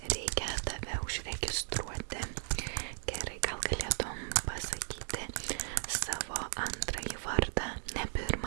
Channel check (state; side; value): silent; left; digital silence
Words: reikia tave užregistruoti. Gerai, gal galėtum pasakyti savo antrąjį vardą. Ne